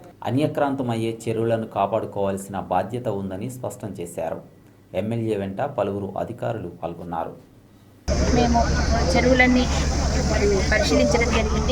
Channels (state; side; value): identical; both; correlation 1.00